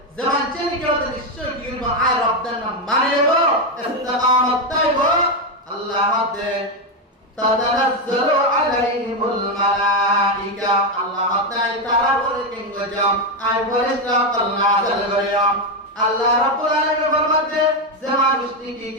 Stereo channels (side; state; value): both; normal; correlation 0.07